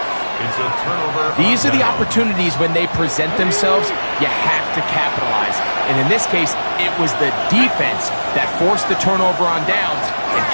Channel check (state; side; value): inverted; both; correlation -1.00